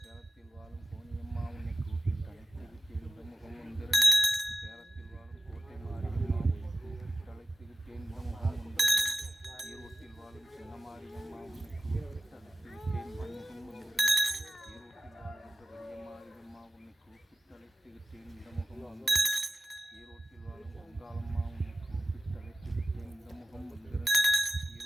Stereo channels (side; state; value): both; normal; correlation 0.94